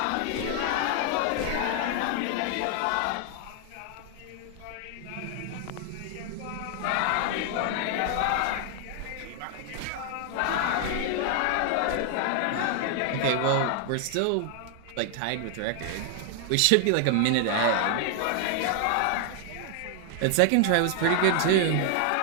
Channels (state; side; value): different; both; correlation 0.00